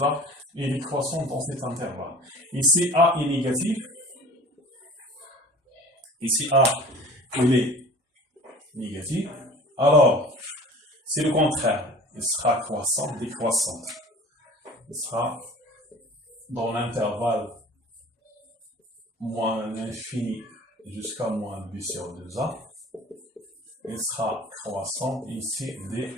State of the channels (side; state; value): both; normal; correlation 0.44